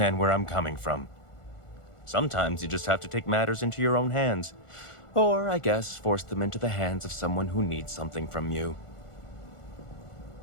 where I'm coming from. Sometimes you just have to take matters into your own hands. Or, I guess, force them into the hands of someone who needs something from you.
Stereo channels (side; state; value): right; late; 1.4 ms